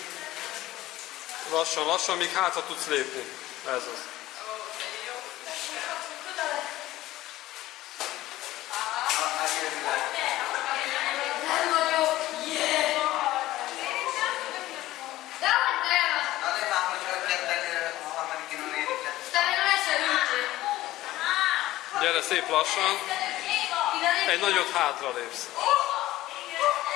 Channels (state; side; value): quieter; right; 16.0 dB